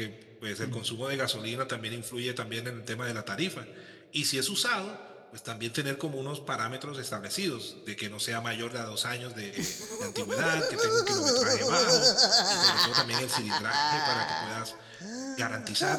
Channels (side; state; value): both; identical; correlation 1.00